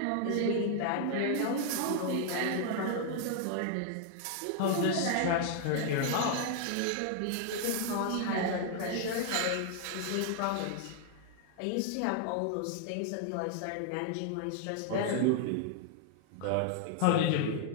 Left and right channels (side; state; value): both; different; correlation 0.00